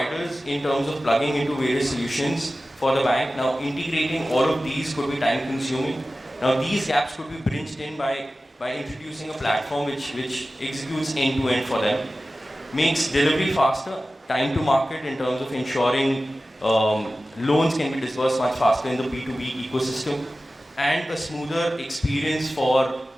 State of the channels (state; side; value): normal; both; correlation 0.95